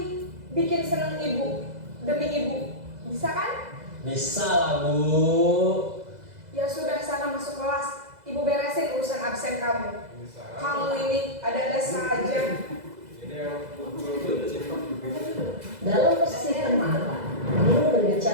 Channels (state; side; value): late; left; 2.0 ms